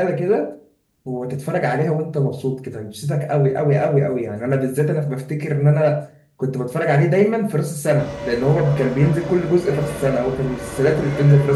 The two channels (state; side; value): identical; both; correlation 1.00